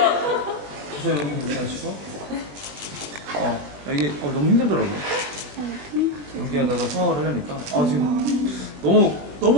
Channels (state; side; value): late; left; 21 ms